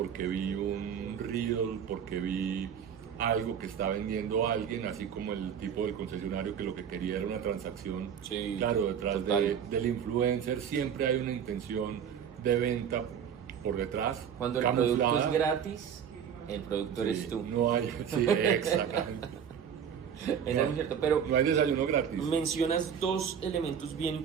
vi un reel, porque vi algo que está vendiendo alguien, así como el tipo del concesionario que lo que quería era una transacción. Sí, claro, detrás del influencer siempre hay una intención de venta por detrás. Cuando el producto es gratis, el productor eres tú. No hay, sí, exactamente. Eso es cierto, pero no hay desayuno gratis. Mencionas 2 elementos bien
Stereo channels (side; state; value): left; quieter; 8.1 dB